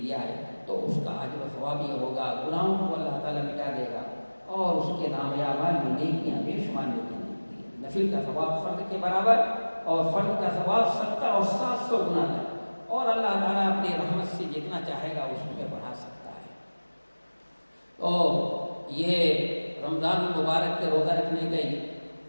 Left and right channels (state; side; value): inverted; both; correlation -1.00